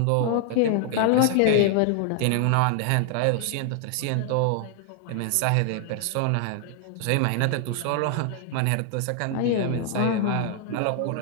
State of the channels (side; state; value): both; different; correlation 0.00